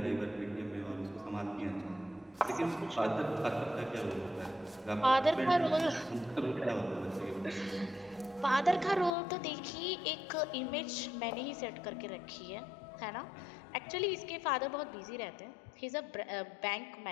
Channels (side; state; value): right; drops out; at 9.2 s